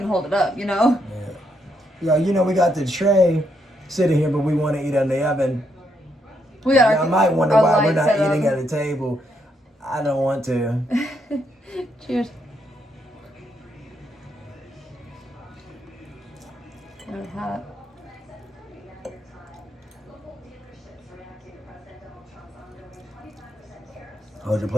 hold it up, you know? Yeah. Yeah, we got the tray sitting here, but we want to eat on the oven. We got I might wonder why we're not eating at a table. I don't want to. Cheers. It's hot. Hold your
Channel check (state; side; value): normal; both; correlation 0.77